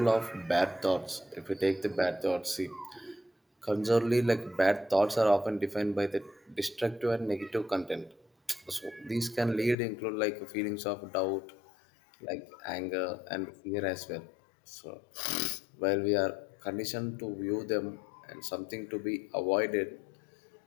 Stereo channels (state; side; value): drops out; right; at 9.8 s